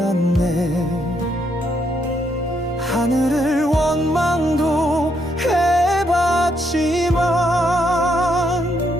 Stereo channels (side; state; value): both; normal; correlation 0.75